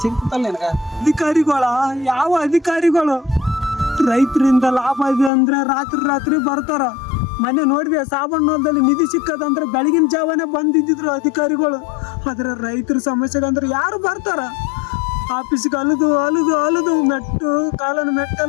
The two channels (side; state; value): right; drops out; at 5.3 s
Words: ಸಿಗ್ತಲ್ಲ ನಿನಗ? ಅಧಿಕಾರಿಗಳ ಯಾವ ಅಧಿಕಾರಿಗಳು ರೈತರಿಂದ ಲಾಭ ಇದೆ ಅಂದ್ರೆ ರಾತ್ರಿ ಬರ್ತಾರ. ಮೊನ್ನೆ ನೋಡಿದೆ ಸಾಬಣ್ಣದಲ್ಲಿ ನಿಧಿ ಸಿಕ್ಕದಂದ್ರೆ ಬೆಳಗಿನ ಜಾವನೇ ಬಂದಿದ್ರು ಅಧಿಕಾರಿಗಳು. ಆದ್ರೆ ರೈತರ ಸಮಸ್ಯೆಗಂದ್ರೆ ಯಾರು ಬರ್ತಾರ? ಆಫೀಸ್ಗೆ ಅಲದು ಮೆಟ್ಟು ಕಾಲನ